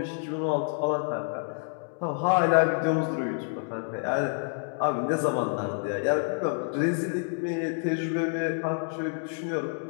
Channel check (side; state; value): right; silent; 59 dB below the other